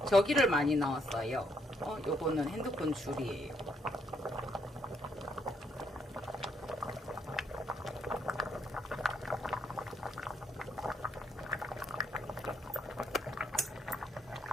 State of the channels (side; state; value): both; normal; correlation 0.74